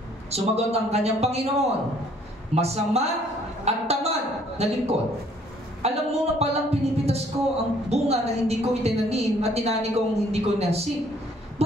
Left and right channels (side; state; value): both; normal; correlation 0.61